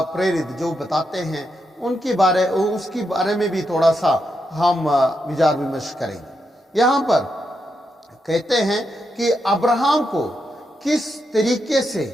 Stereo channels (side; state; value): both; normal; correlation 0.83